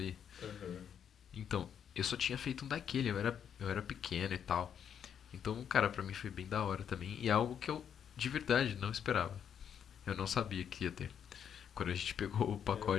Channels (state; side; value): quieter; right; 8.4 dB